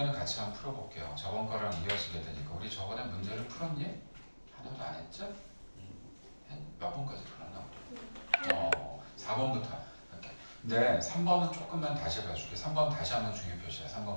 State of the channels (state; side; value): inverted; both; correlation -1.00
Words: 같이 한번 풀어볼게요. 저번 거랑 이어지게 되니까 우리 저번에 문제를 풀었니? 하나도 안 했죠? 몇 번까지 풀었나? 4번부터 할게. 근데 3번은 조금만 다시 봐줄게. 3번 다시 한번 중요 표시야.